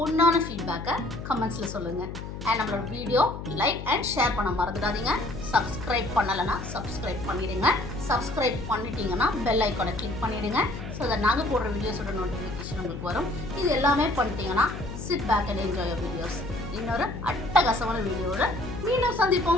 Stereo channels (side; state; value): left; noise; hum, 9 dB below the sound